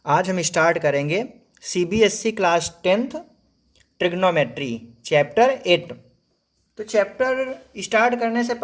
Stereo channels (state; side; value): identical; both; correlation 1.00